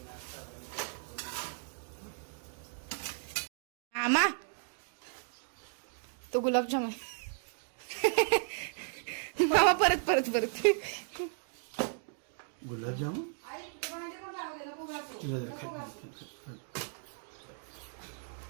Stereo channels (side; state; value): left; silent; digital silence